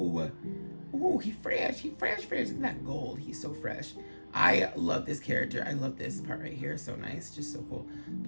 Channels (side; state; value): both; inverted; correlation -1.00